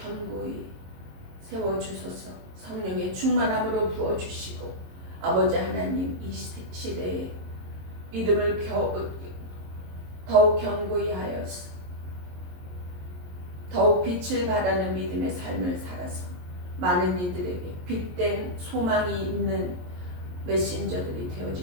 세워주소서. 성령의 충만함으로 부어주시고 아버지 하나님, 이 시대에 믿음을 더욱 견고히 하여서 더욱 빛을 발하는 믿음의 삶을 살아서 많은 이들에게 빛된 소망이 있는 메신저들이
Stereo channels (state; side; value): late; left; 22 ms